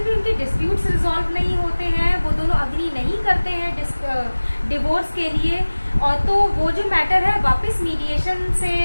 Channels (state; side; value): inverted; both; correlation -1.00